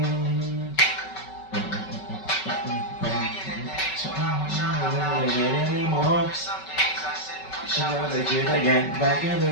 Again, back in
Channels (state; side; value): late; right; 5.3 ms